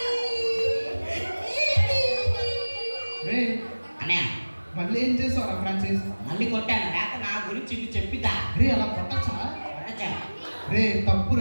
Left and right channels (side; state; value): both; inverted; correlation -1.00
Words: రే అన్నయ్య మళ్ళీ ఏం చేస్తావురా ఫ్రాన్సిస్? మళ్ళీ కొట్టాను. లేక నా గురించి ఇది చెప్పిద్దా? రే అలా కొట్టచ్చా? కొట్టచ్చా? రే